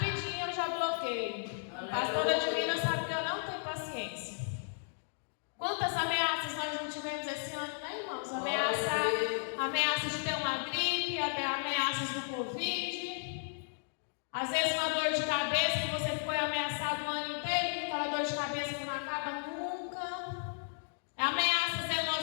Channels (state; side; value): silent; right; digital silence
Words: eu já bloqueio. A pastora Divina sabe que eu não tenho paciência. Quantas ameaças nós não tivemos esse ano, né, irmãos? Ameaças de ter uma gripe, até ameaças do Covid. Às vezes uma dor de cabeça que você foi ameaçado o ano inteiro, aquela dor de cabeça que não acaba nunca. Ameaças